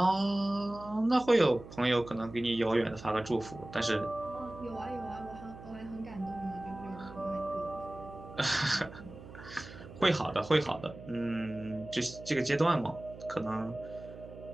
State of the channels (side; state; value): right; noise; hum, 15 dB below the sound